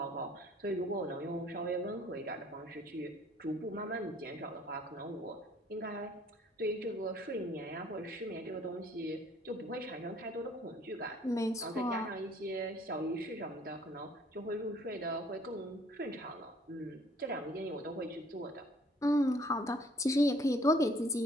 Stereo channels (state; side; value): normal; both; correlation 0.58